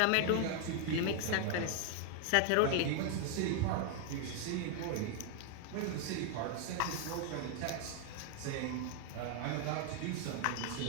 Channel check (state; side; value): different; both; correlation 0.00